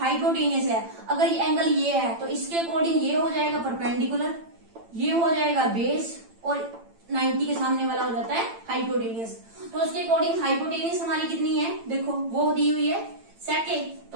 है, अगर ये एंगल ये है तो इसके अकॉर्डिंग ये हो जाएगा परपेंडिकुलर, ये हो जाएगा बेस, और 90 के सामने वाला हो जाता है हाइपोटेनियस। तो उसके अकॉर्डिंग हाइपोटेनियस हमारी कितनी है, देखो वो दी हुई है सेक ए,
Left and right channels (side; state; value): left; late; 8.9 ms